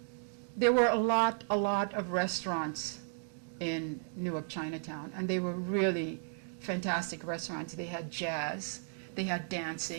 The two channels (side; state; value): left; silent; digital silence